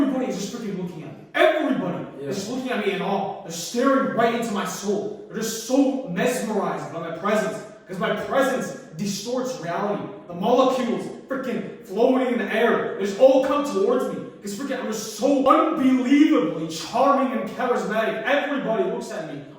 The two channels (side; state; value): both; identical; correlation 1.00